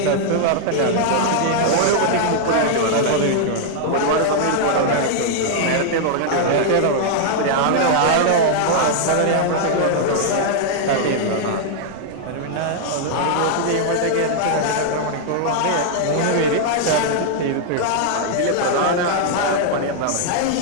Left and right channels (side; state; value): both; different; correlation -0.01